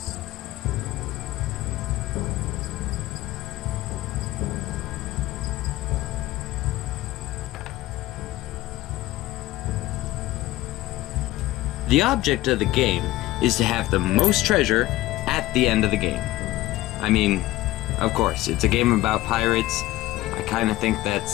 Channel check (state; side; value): quieter; right; 17.0 dB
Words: The object of the game is to have the most treasure at the end of the game. I mean, of course, it's a game about pirates. I kind of think